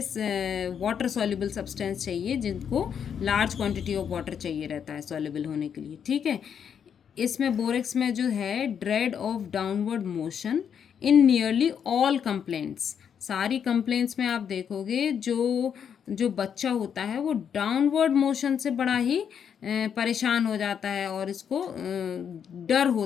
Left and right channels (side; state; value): right; quieter; 7.8 dB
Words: वाटर सॉल्युबल सब्सटेंस चाहिए जिनको लार्ज क्वांटिटी ऑफ वाटर चाहिए रहता है सॉल्युबल होने के लिए, ठीक है। इसमें बोरेक्स में जो है dread of downward motion in nearly all complaints. सारी कंप्लेंट्स में आप देखोगे जो जो बच्चा होता है वो डाउनवर्ड मोशन से बड़ा ही परेशान हो जाता है और इसको डर